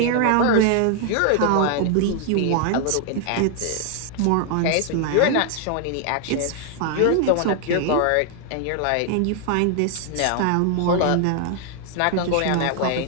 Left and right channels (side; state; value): both; different; correlation 0.00